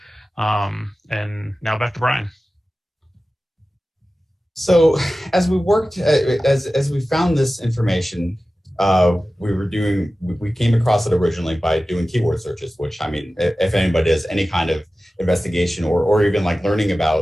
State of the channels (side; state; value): both; normal; correlation 0.95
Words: And now back to Brian. So as we worked, as we found this information, we came across it originally by doing keyword searches, which, I mean, if anybody does any kind of investigation or even like learning